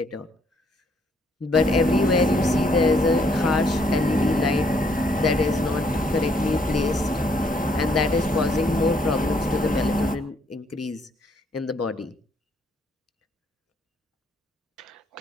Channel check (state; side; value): normal; both; correlation 0.69